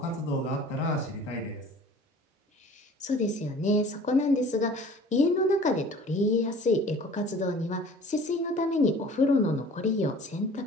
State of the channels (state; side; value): normal; both; correlation 0.47